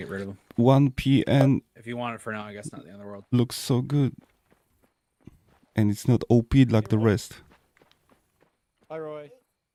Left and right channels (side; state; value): both; identical; correlation 1.00